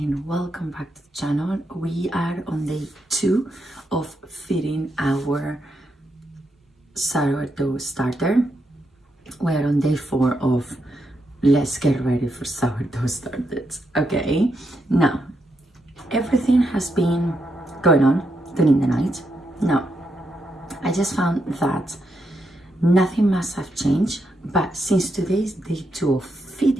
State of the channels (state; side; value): normal; both; correlation 0.82